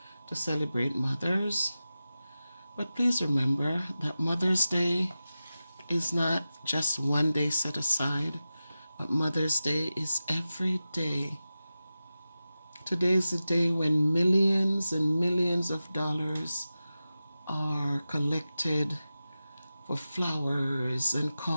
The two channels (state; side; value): inverted; both; correlation -0.94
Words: to celebrate mothers. But please remember that Mother's Day is not just one day set aside, but Mother's Day is every day. Today is the day when millions and millions of dollars are collected for flowers and